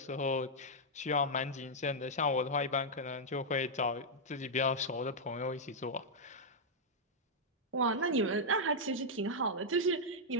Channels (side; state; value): both; normal; correlation -0.05